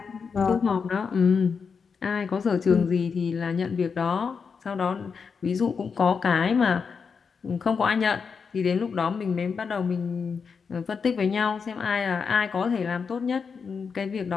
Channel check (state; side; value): quieter; right; 5.7 dB